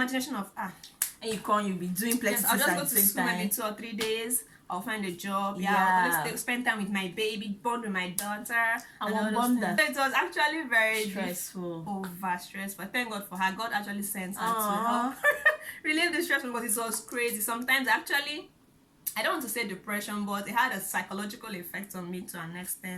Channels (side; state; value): both; identical; correlation 1.00